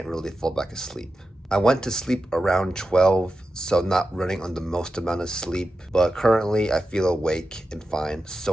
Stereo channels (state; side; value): normal; both; correlation 0.91